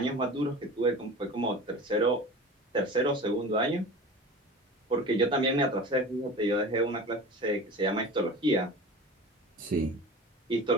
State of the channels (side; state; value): both; normal; correlation 0.36